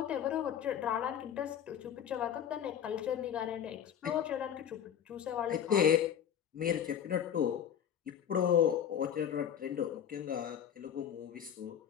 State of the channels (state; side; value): quieter; right; 9.0 dB